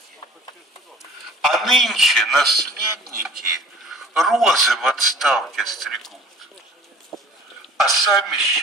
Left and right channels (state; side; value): normal; both; correlation 0.47